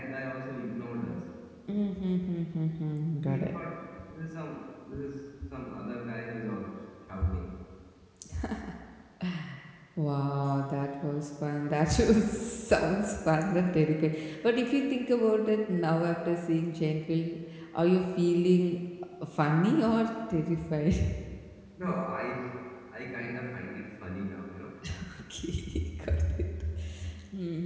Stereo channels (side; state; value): both; identical; correlation 1.00